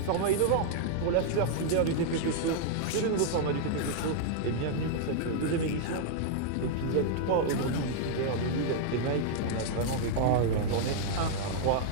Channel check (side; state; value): both; different; correlation -0.01